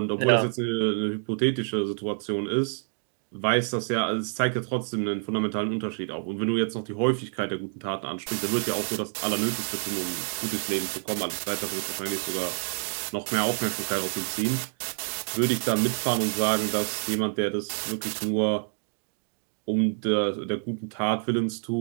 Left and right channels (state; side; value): silent; left; 60 dB below the other